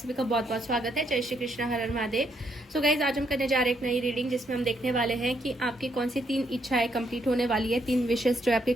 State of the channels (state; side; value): normal; both; correlation 0.74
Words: का बहुत बहुत स्वागत है। जय श्री कृष्ण, हर हर महादेव। सो गाइज, आज हम करने जा रहे हैं एक नई रीडिंग जिसमें हम देखने वाले हैं कि आपकी कौन सी 3 इच्छाएं कंप्लीट होने वाली है, 3 विशेष जो आपकी